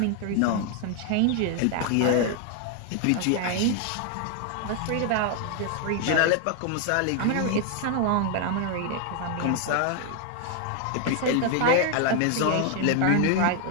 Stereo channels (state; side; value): different; both; correlation 0.00